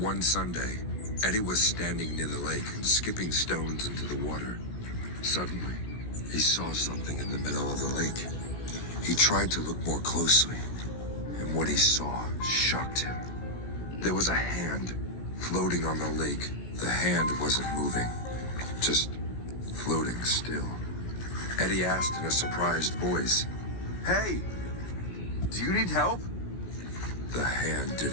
Sunday, Eddie was standing near the lake and skipping stones into the water. Suddenly, he saw something in the middle of the lake. He tried to look more closely, and what he saw shocked him. There was a hand floating on the lake. The hand wasn't moving, just floating still. Eddie asked in a surprised voice, "Hey, do you need help?" The hand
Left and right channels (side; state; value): right; late; 17 ms